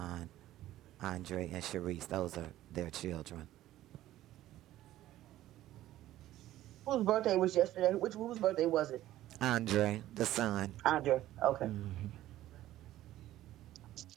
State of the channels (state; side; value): quieter; left; 14.3 dB